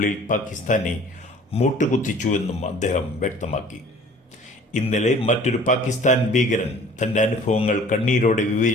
പാകിസ്ഥാനെ മൂട്ടുകുത്തിച്ചുവെന്നും അദ്ദേഹം വ്യക്തമാക്കി. ഇന്നലെ മറ്റൊരു പാകിസ്ഥാൻ ഭീകരൻ തന്റെ അനുഭവങ്ങൾ കണ്ണീരോടെ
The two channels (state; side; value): normal; both; correlation 0.49